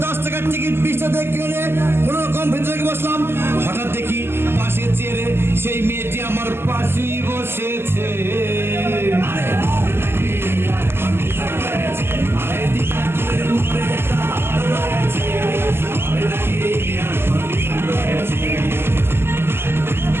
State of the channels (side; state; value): left; late; 0.12 ms